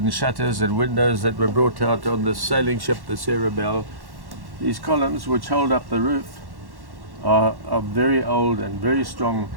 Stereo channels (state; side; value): late; left; 1.1 ms